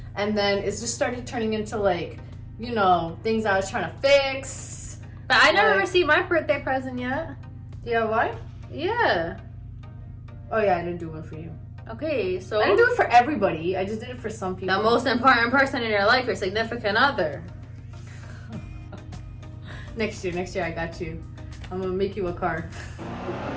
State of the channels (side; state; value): both; identical; correlation 1.00